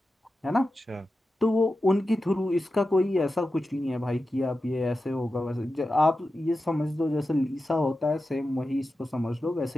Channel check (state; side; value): normal; both; correlation 0.92